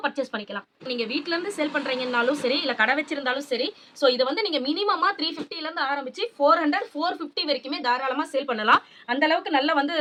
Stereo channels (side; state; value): both; identical; correlation 1.00